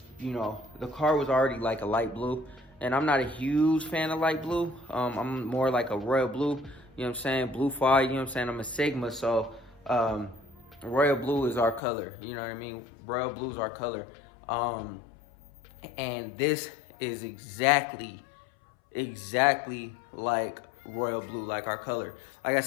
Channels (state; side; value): drops out; right; at 11.8 s